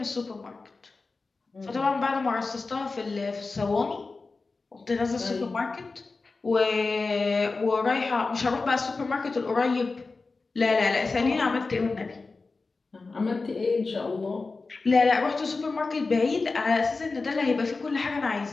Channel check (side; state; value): right; quieter; 3.9 dB